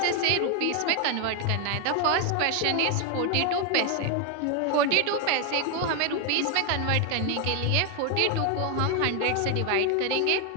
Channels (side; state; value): both; different; correlation 0.01